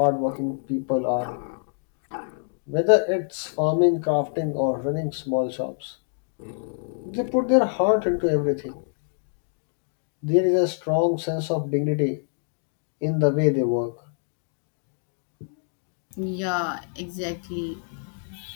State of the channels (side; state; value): right; silent; digital silence